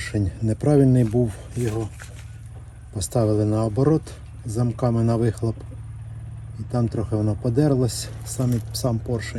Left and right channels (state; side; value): identical; both; correlation 1.00